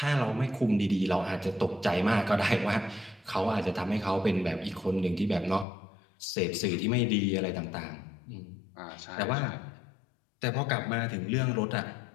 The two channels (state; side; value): drops out; right; at 5.7 s